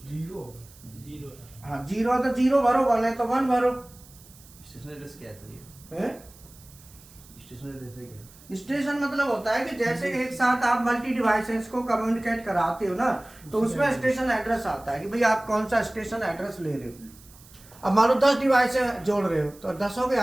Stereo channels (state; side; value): noise; right; hiss, 23 dB below the sound